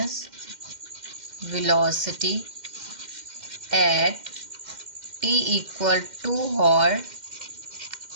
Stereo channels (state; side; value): late; left; 2.1 ms